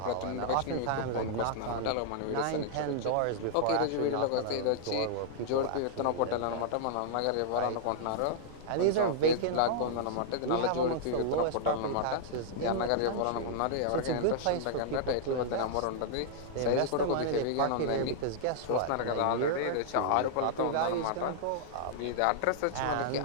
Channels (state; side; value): different; both; correlation -0.01